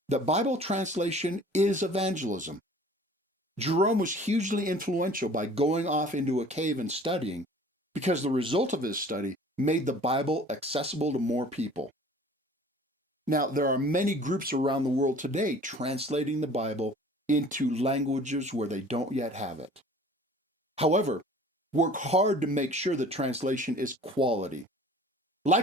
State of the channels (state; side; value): normal; both; correlation 0.48